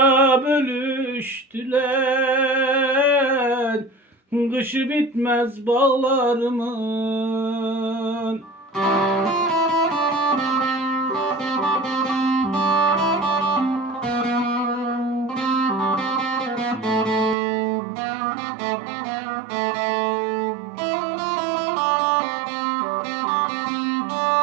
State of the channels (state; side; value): drops out; left; at 17.4 s